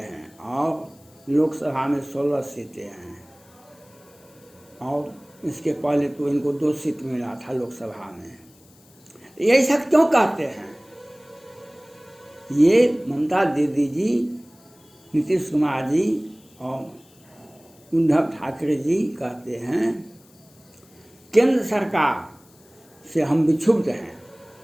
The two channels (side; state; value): left; noise; hiss, 28 dB below the sound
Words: और लोकसभा में 16 सीटें हैं, और इसके पहले तो इनको 2 सीट मिला था लोकसभा में। यही सब क्यों कहते हैं? ये ममता दीदी जी, नीतीश कुमार जी और उद्धव ठाकरे जी कहते हैं केंद्र सरकार से हम विक्षुब्ध हैं,